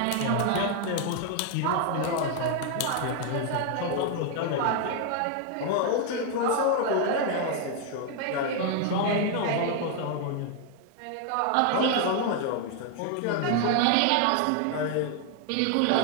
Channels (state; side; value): different; both; correlation 0.00